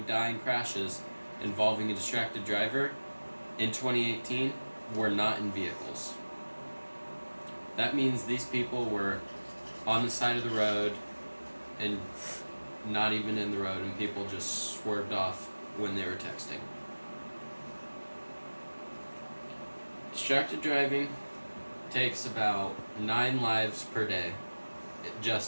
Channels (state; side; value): inverted; both; correlation -1.00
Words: die in crashes involving a distracted driver in 2018 were not in vehicles. That means these people were on the side of the road and not even in the road, and people just swerved off when they were texting. Distracted driving takes about 9 lives per day